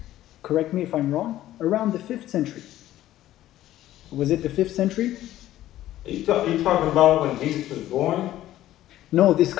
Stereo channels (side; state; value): right; quieter; 13.9 dB